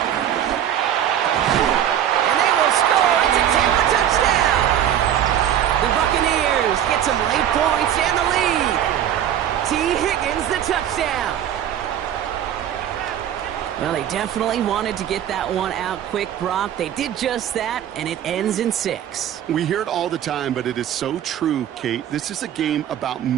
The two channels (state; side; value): quieter; left; 10.4 dB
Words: And they will score. It's a Tampa touchdown. The Buccaneers get some late points and the lead. T. Higgins, the touchdown. Well, they definitely wanted to get that one out quick, Brock. They did just that, and it ends in 6. We hear it all the time, but it is so true, Kate. This is a game about